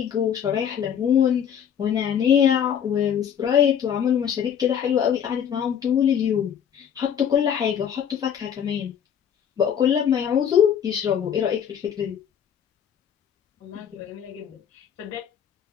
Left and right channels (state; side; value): quieter; right; 8.6 dB